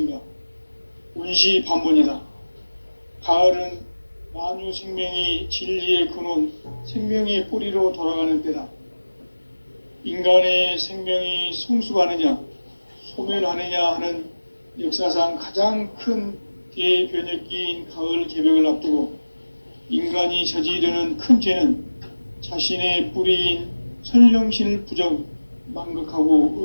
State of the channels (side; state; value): both; inverted; correlation -1.00